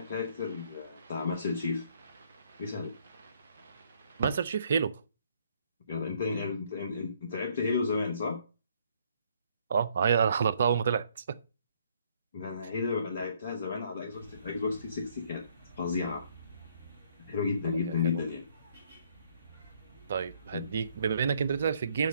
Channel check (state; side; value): inverted; both; correlation -0.66